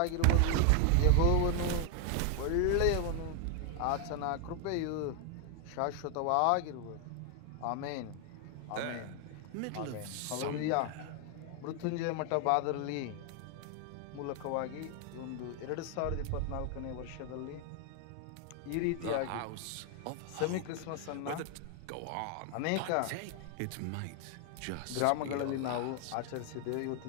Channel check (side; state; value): both; different; correlation 0.00